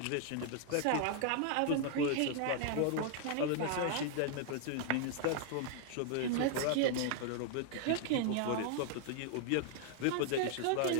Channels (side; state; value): both; different; correlation 0.00